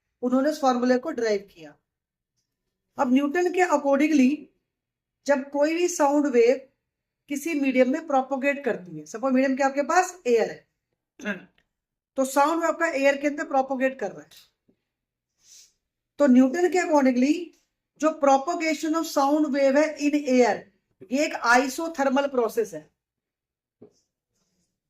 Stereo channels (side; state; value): both; identical; correlation 1.00